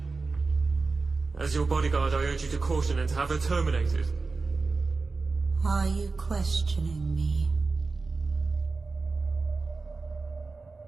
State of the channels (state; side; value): quieter; left; 4.0 dB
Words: As your bodyguard, I urge you to caution and to have her terminated. Are you questioning me?